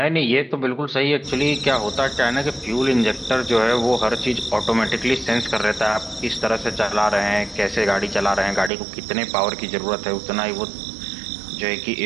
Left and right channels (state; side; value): drops out; left; at 8.7 s